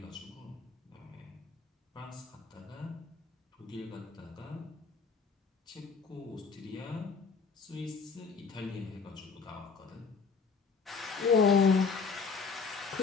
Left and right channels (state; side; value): quieter; right; 5.0 dB